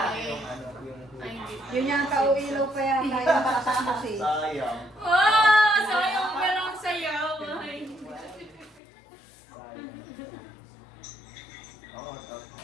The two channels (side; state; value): right; drops out; at 8.8 s